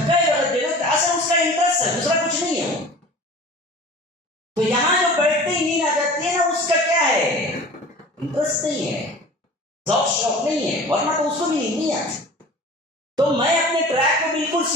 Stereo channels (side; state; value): both; normal; correlation 0.41